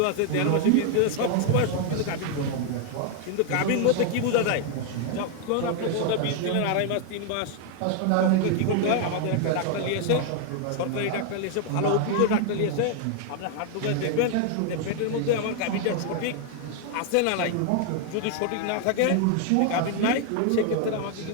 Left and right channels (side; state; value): both; different; correlation 0.00